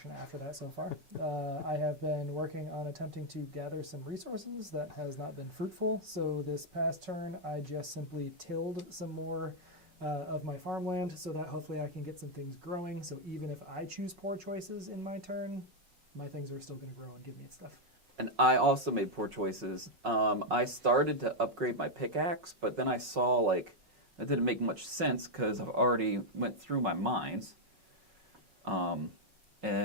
after that so far. I have been working on attempting to gather some resources that has not been fruitful. So this past turn, I just simply tilled some more of my farmland so that hopefully I can get some things growing. So even if I choose poor choices in my turn, my things are still going to grow and give me stuff. And I also made poor choices. I started to upgrade my pickaxe, but then I saw like that didn't make much sense because I've already went through my mines.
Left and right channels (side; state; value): left; late; 5.4 ms